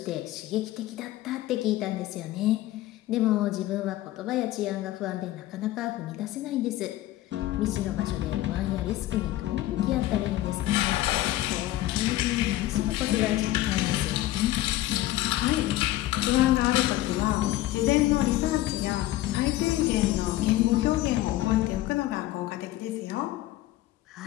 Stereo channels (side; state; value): right; quieter; 15.5 dB